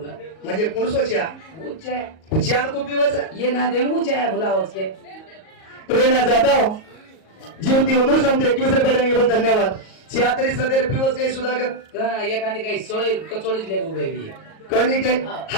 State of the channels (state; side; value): late; right; 38 ms